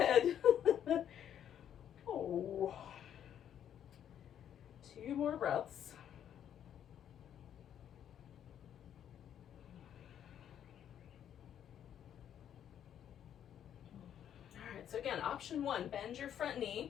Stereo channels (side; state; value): right; quieter; 9.7 dB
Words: Oh. 2 more breaths. All right, so again, option 1, bend your front